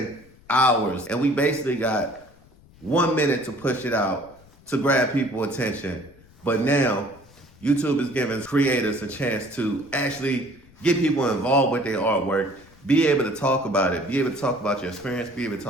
hours and we basically got 1 minute to push it out to grab people's attention. But now YouTube is giving creators a chance to actually get people involved with their artwork, be able to talk about it, be able to talk about your experience, be able to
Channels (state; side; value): noise; left; rumble, 26 dB below the sound